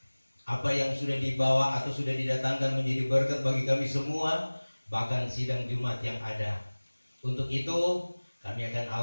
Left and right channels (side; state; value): both; inverted; correlation -1.00